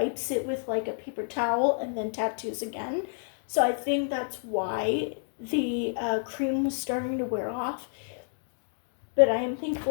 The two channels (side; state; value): right; silent; digital silence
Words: it with like a paper towel and then tattoos again. So I think that's why the cream was starting to wear off. But I am